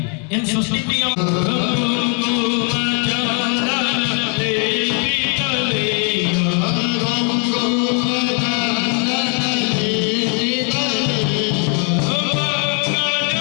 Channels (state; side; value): quieter; right; 38.9 dB